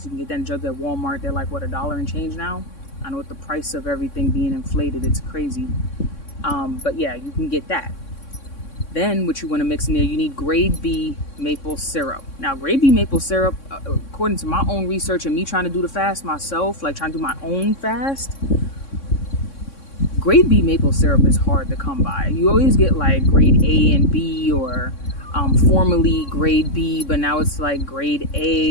You can get that in jugs at Walmart. They're like, what, $1 and change now? I know with the price of everything being inflated, it's crazy. But yeah, you can get that. Then what you want to mix in there, you need grade B maple syrup. Now, grade B maple syrup, according to my own research and me trying to do the fast myself, like trying to do my own fast, grade B maple syrup is hard to come by. You always get like grade A and B, or formerly grade B, but now it's like grade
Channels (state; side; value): late; right; 3.6 ms